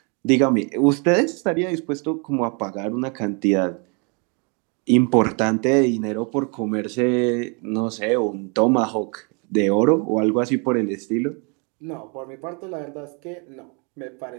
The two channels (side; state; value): left; quieter; 34.4 dB